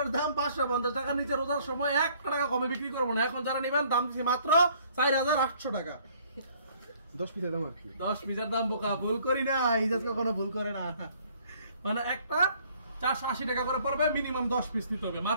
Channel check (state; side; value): inverted; both; correlation -0.60